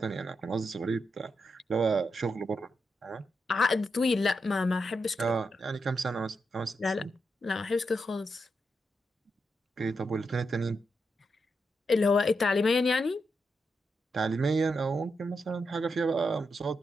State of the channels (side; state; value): both; normal; correlation 0.84